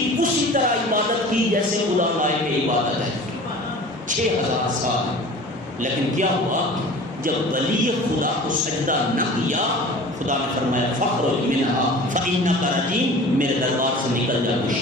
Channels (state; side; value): normal; both; correlation 0.41